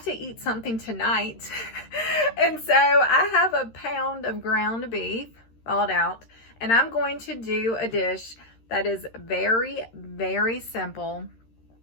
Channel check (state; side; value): late; right; 13 ms